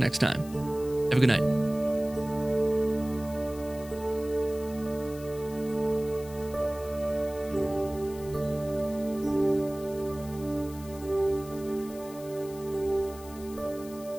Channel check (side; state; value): left; noise; hiss, 18 dB below the sound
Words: time. Have a good night.